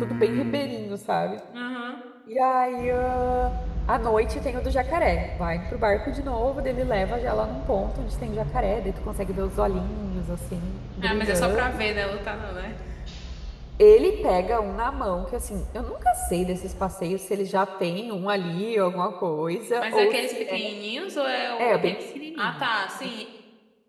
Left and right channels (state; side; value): identical; both; correlation 1.00